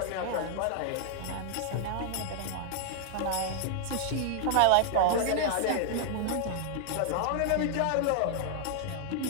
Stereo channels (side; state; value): both; different; correlation 0.00